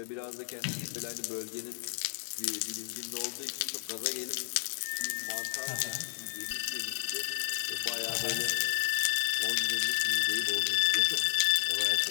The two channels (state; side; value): silent; right; digital silence